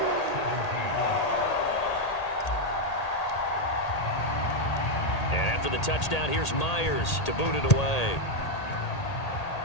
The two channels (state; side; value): late; right; 1.8 ms